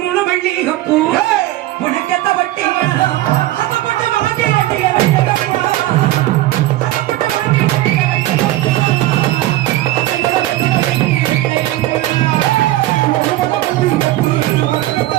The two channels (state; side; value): quieter; left; 16.0 dB